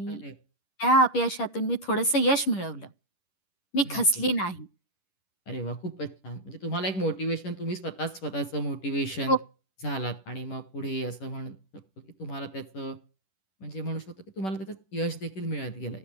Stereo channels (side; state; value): right; late; 11 ms